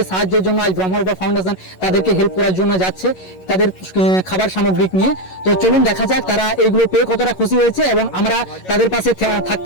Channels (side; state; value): right; late; 11 ms